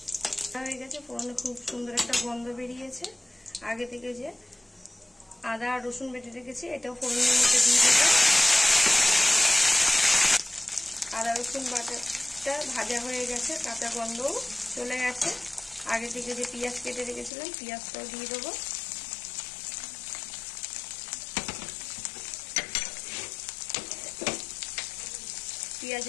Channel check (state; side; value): drops out; right; at 17.3 s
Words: হয়ে গেছে, ফোড়নে খুব সুন্দর একটা গন্ধ বেরিয়েছে। আগে থেকে যে আদা আর রসুন বেটে রেখেছি এটাও ফোড়নের মধ্যে দিয়ে দেবো। আদা রসুন বাটাটা ভাজা হয়ে গেছে, কাঁচা গন্ধও চলে গেছে। আগে থেকে যে পেঁয়াজ কেটে রেখেছিলাম পেঁয়াজটাও দিয়ে দেবো।